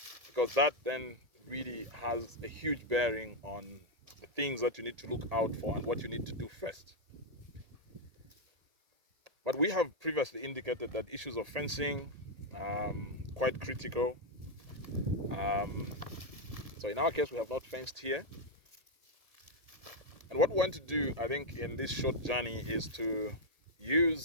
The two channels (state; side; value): late; left; 1.8 ms